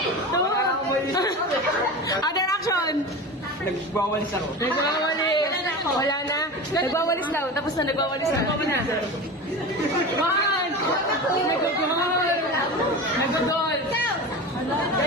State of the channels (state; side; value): normal; both; correlation 0.29